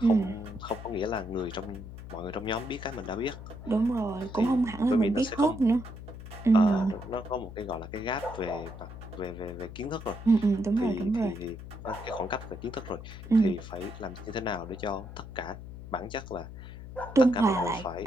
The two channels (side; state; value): left; noise; hum, 12 dB below the sound